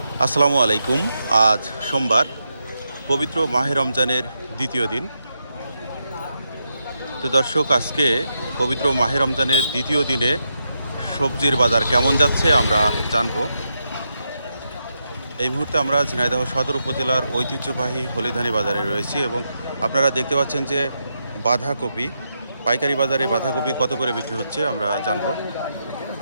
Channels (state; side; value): inverted; both; correlation -0.84